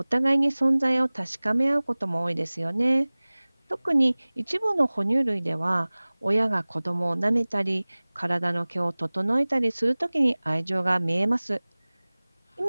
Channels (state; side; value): inverted; both; correlation -1.00